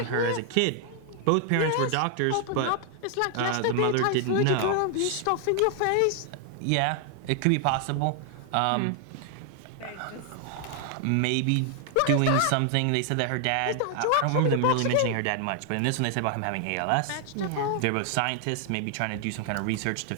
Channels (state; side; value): different; both; correlation 0.00